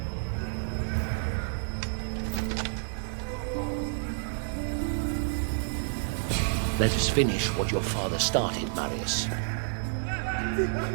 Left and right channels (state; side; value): silent; left; digital silence